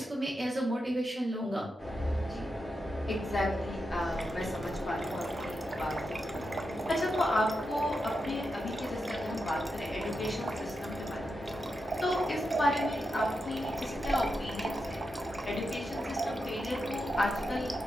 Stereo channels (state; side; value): normal; both; correlation 0.87